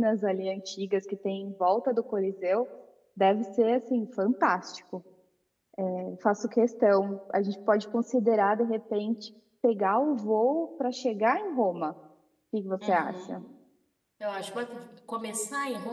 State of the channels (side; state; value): both; identical; correlation 1.00